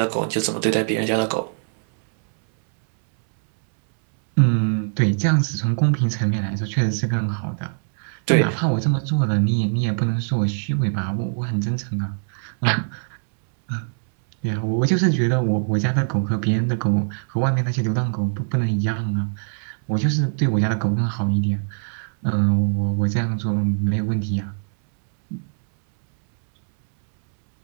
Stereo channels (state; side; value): silent; left; 64 dB below the other